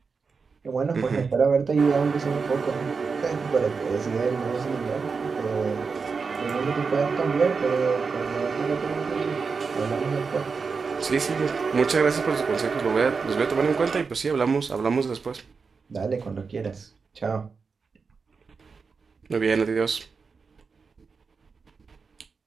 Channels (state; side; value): quieter; left; 5.0 dB